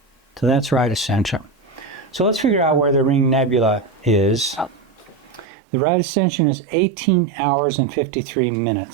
So that's right ascension. So let's figure out where the Ring Nebula is. The right ascension is 18 hours and 53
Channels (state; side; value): drops out; left; at 5.5 s